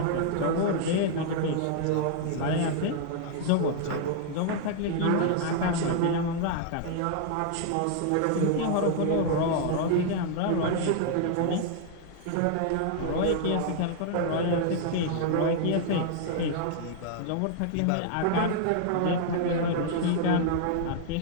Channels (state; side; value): different; both; correlation -0.01